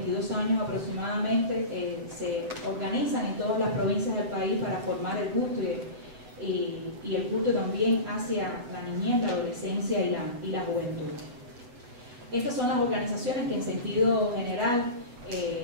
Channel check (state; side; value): late; left; 8.1 ms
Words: años aproximadamente se organizan en todas las provincias del país para formar el gusto y el culto también hacia la niñez, la adolescencia y la juventud. Estas son las organizaciones que en sentido general